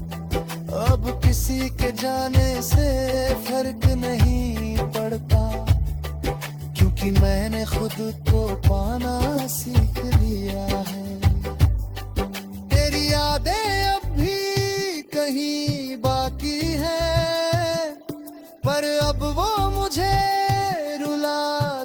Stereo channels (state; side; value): identical; both; correlation 1.00